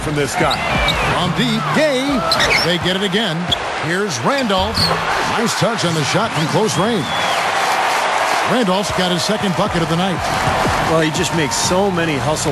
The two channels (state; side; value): identical; both; correlation 1.00